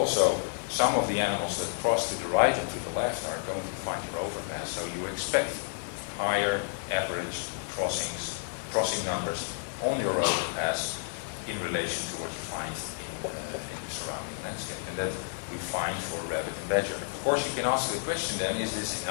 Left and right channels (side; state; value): right; silent; digital silence